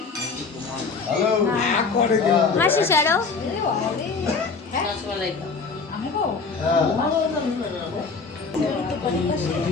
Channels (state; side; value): quieter; right; 4.7 dB